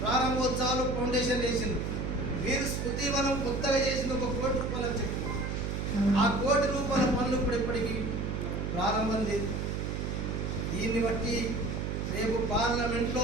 ప్రారంభోత్సవాలు, ఫౌండేషన్ చేసిండ్రు. మీరు స్మృతివనం కొత్తగా చేసింది ₹1 కోటి అని చెప్పి ఆ ₹1 కోటి పనులు ఇప్పుడు ఇప్పటికీ ప్రారంభం లేదు. దీన్ని బట్టి రేపు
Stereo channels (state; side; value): noise; right; hum, 2 dB below the sound